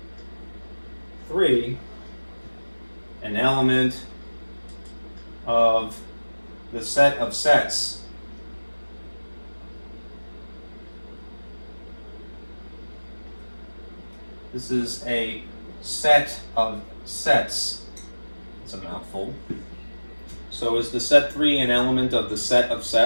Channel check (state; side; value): inverted; both; correlation -1.00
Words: 3, an element of the set of sets. This is a set of sets. It's a mouthful. So is the set 3 an element of the set of